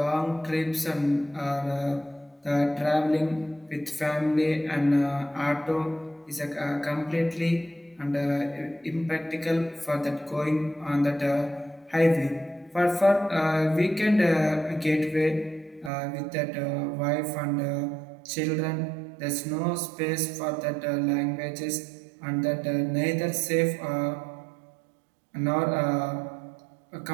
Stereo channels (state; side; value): drops out; left; at 15.9 s